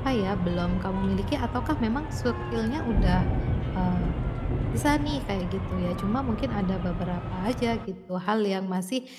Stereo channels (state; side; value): identical; both; correlation 1.00